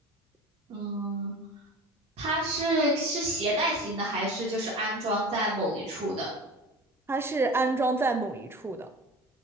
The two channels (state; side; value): normal; both; correlation 0.36